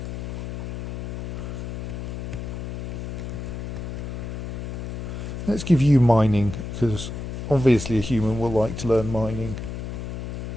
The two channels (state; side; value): noise; left; hum, 6 dB below the sound